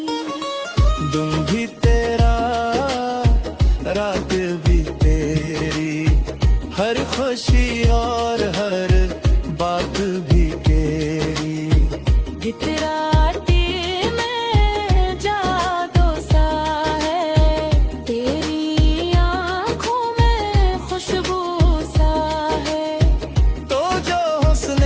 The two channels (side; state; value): both; identical; correlation 1.00